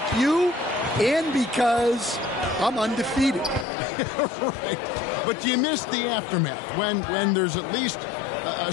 you and because I'm undefeated. Right. But do you miss the aftermath when there's at least a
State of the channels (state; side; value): drops out; right; at 3.7 s